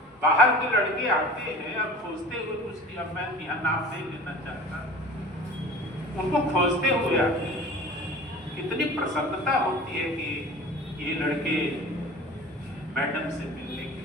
बाहर के लड़के आते हैं और खोजते हुए कुछ, अब मैं यहाँ नाम नहीं लेना चाहता, उनको खोजते हुए आते हैं। कितनी प्रसन्नता होती है कि ये लड़के मैडम से मिलने के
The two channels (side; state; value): both; normal; correlation 0.40